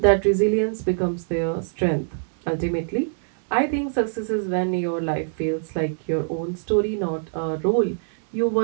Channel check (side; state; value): left; silent; digital silence